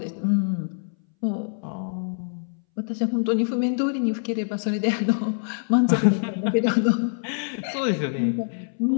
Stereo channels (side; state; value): right; silent; 60 dB below the other